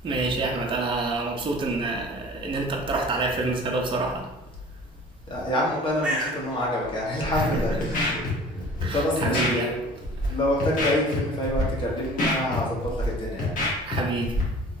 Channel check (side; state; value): both; normal; correlation 0.45